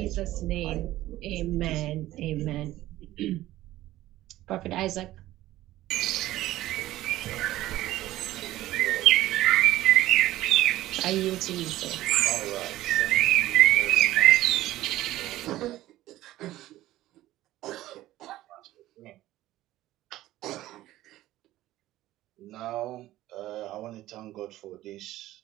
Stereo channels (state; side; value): quieter; left; 15.4 dB